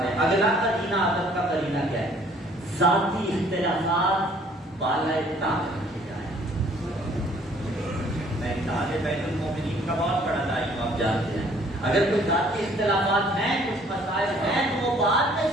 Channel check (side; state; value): both; normal; correlation 0.58